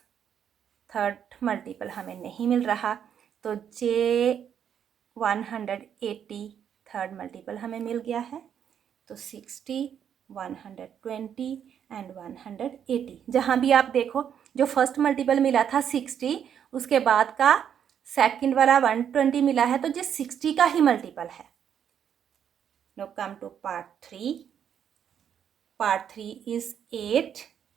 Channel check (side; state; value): left; quieter; 8.7 dB